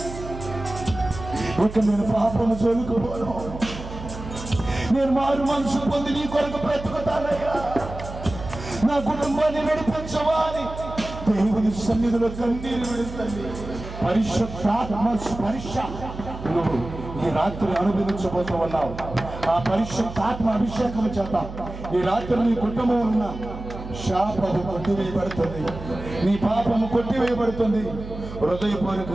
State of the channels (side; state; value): right; noise; hum, 11 dB below the sound